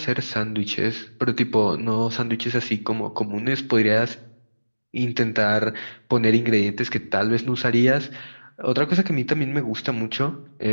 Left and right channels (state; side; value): inverted; both; correlation -1.00